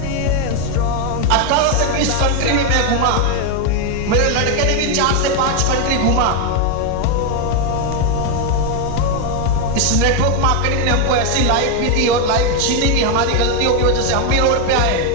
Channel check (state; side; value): different; both; correlation 0.01